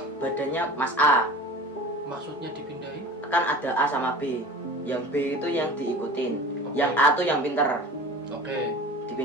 badannya Mas A. Maksudnya dipindahin? Kan ada A sama B. Yang B itu yang diikutin. Oke. Yang A tuh yang pinter. Oke.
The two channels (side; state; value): both; normal; correlation 0.38